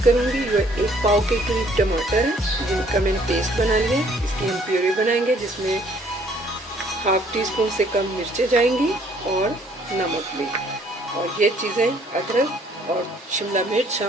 करूँगी। ये 1 पाव के करीब टमाटर है जिनका मैंने पेस्ट बना लिया है, इसकी हम प्यूरी बनाएंगे जिसमें हाफ टी स्पून से कम मिर्चें जाएंगी और नमक भी, और ये चीज़ें अदरक और शिमला मिर्च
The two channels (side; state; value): both; normal; correlation 0.61